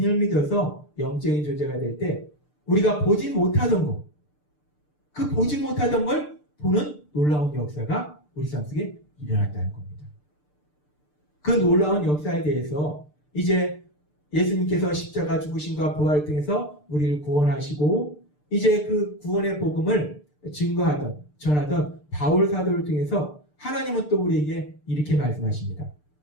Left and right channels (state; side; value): late; right; 6.7 ms